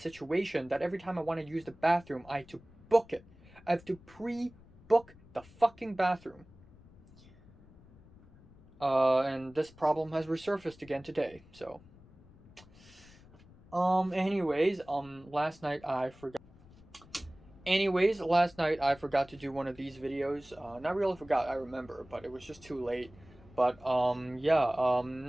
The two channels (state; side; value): noise; left; rumble, 24 dB below the sound